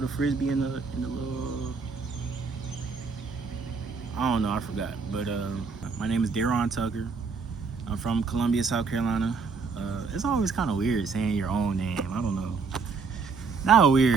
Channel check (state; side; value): quieter; left; 4.9 dB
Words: frisbee in the little? I don't know. I forgot. But my name is Daron Tucker. I'm from Columbia, South Carolina. It's always kind of weird saying your own name. I don't know. Not